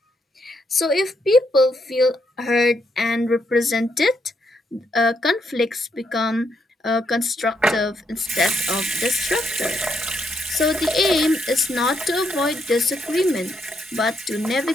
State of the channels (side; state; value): both; normal; correlation 0.77